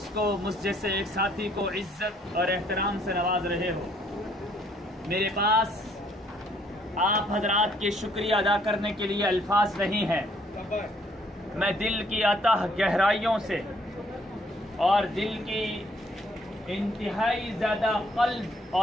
کو، مجھ جیسے ایک ساتھی کو عزت اور احترام سے نواز رہے ہو۔ میرے پاس آپ حضرات کے شکریہ ادا کرنے کے لیے الفاظ نہیں ہیں۔ میں دل کی اتہ گہرائیوں سے اور دل کی انتہائی زیادہ قلب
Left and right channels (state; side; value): normal; both; correlation 0.65